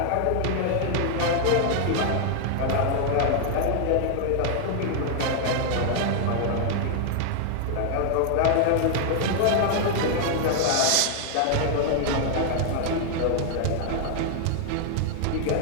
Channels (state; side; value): different; both; correlation 0.00